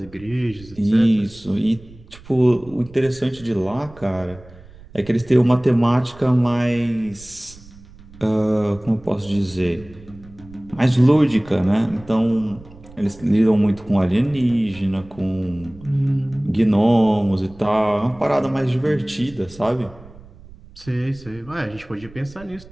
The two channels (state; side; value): noise; right; rumble, 21 dB below the sound